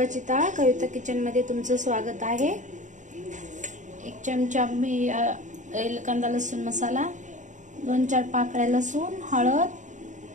डाळ। कविता किचन मध्ये तुमचं स्वागत आहे। 1 चमचा मी कांदा लसूण मसाला, 2-4 पाकळ्या लसूण,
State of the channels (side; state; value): left; late; 0.36 ms